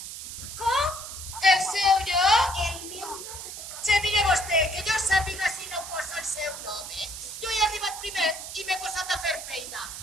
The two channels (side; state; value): right; noise; hiss, 9 dB below the sound